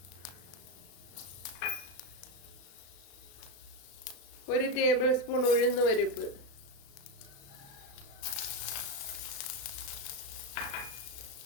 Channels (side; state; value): right; late; 35 ms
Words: ഒരു ടേബിൾ സ്പൂൺ ഉഴുന്ന് പരിപ്പ്,